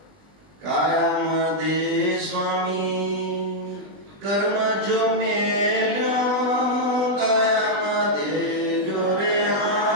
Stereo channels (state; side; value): late; left; 20 ms